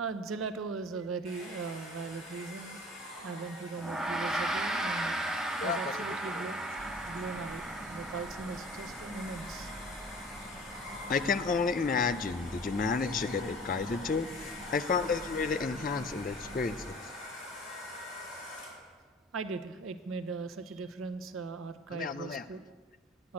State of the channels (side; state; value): both; normal; correlation 0.45